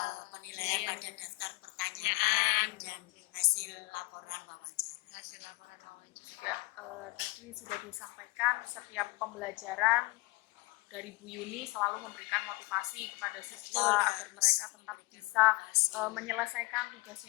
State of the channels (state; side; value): quieter; right; 23.7 dB